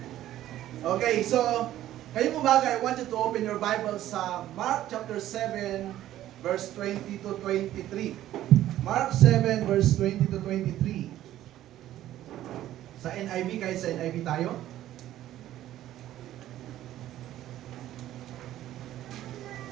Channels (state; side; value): quieter; left; 13.3 dB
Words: Okay, so ngayong umaga, I want you to open your Bible sa Mark chapter 7, verse 20 to 23. Mark 7, verse 20 to 23. Sa NIV, kahit sa NIV tayo.